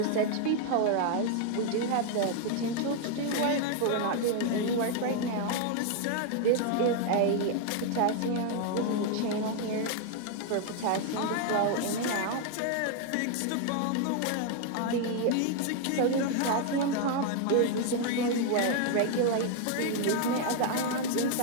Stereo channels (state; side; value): different; both; correlation 0.00